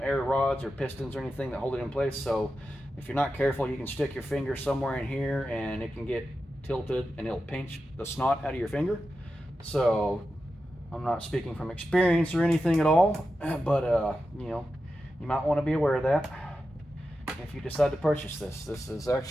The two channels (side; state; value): both; normal; correlation 0.90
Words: rods or pistons or anything that hold it in place. So if you're not careful, you can stick your finger somewhere in here and it can get tilted and it'll pinch the snot out of your finger. So I'm not speaking from experience or anything at all, but you know, you might want to be aware of that if you decide to purchase this. This is